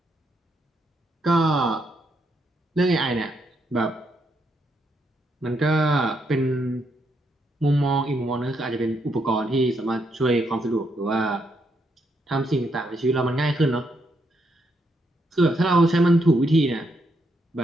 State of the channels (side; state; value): both; normal; correlation 0.77